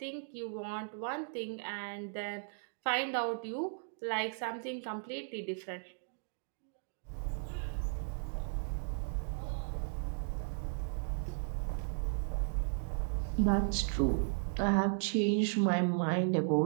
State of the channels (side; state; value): left; silent; digital silence